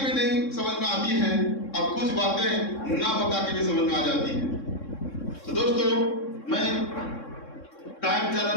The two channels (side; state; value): right; late; 3.6 ms